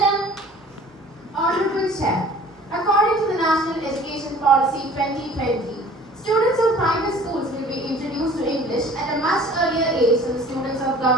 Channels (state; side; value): normal; both; correlation 0.48